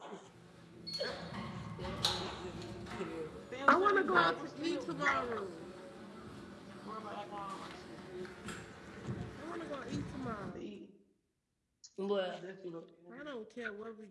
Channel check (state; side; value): identical; both; correlation 1.00